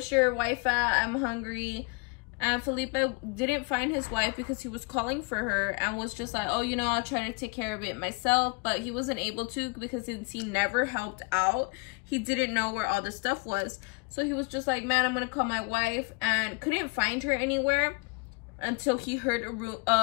your wife at? I'm hungry. And Felipe didn't find his wife because he was calling for her and was just like, oh, you know, I'll try to take care of it myself. But he wasn't able to because since he never helped out, he didn't know where all the stuff was. So he was just like, man, I'm going to call my wife, and couldn't find her anywhere until he heard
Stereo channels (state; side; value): quieter; right; 30.5 dB